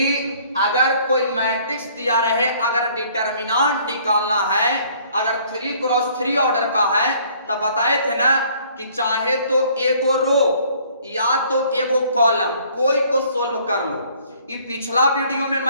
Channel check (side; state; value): both; inverted; correlation -0.58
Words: अगर कोई मैट्रिक्स दिया रहे, अगर डिटरमिनेंट निकालना है, अगर 3x3 ऑर्डर का है, तो बताए थे ना कि चाहे तो एगो रो या तो एगो कॉलम कोई को सोल्व कर लो। ये पिछला वीडियो में